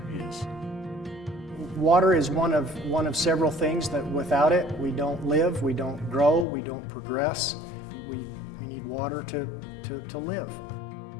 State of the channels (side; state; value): right; drops out; at 6.5 s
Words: is. Water is one of several things that without it, we don't live, we don't grow, we don't progress. We need water to live.